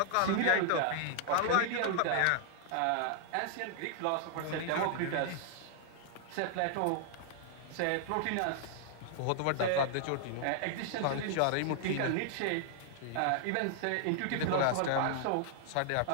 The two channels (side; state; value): both; different; correlation 0.00